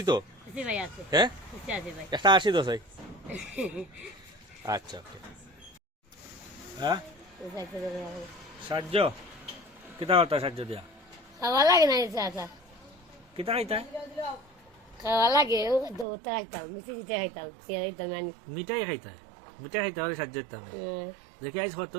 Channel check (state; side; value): drops out; left; at 16.1 s